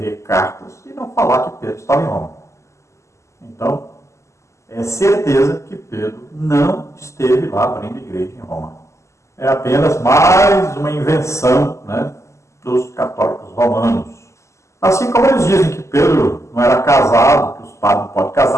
cartas e não falar que Pedro estava em Roma. Então, é certeza que Pedro não esteve lá abrindo igreja em Roma. É apenas mais uma invenção, né, dos católicos romanos. Assim como eles dizem que Pedro não era casado, que os padres não podem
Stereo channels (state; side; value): late; right; 0.14 ms